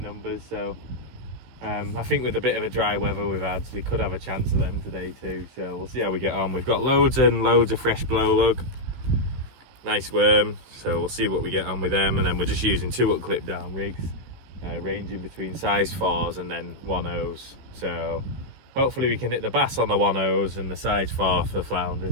numbers. So I think with a bit of a dry weather we've had, we could have a chance of them today too. So we'll see how we get on. We've got loads and loads of fresh blow lug, nice worm. So we'll see what we get on with them, and then we're just using 2 up clip down rigs, ranging between size 4s and then 1/0s. So hopefully we can hit the bass on the 1/0s and the size 4 for flounders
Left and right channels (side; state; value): left; late; 15 ms